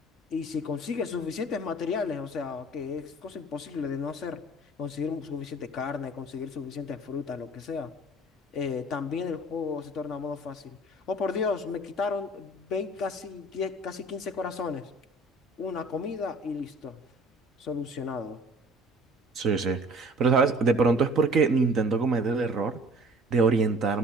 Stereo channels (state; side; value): normal; both; correlation 0.49